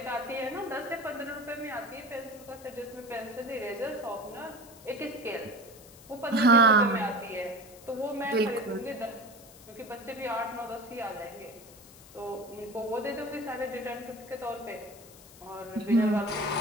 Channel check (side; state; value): left; noise; hiss, 21 dB below the sound